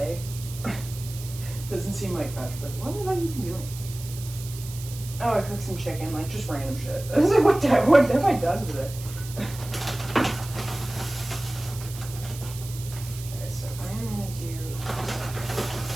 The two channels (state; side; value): noise; right; hiss, 14 dB below the sound